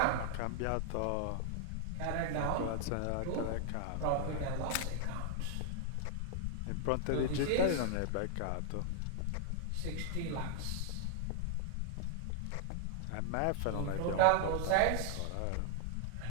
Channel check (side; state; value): both; different; correlation 0.00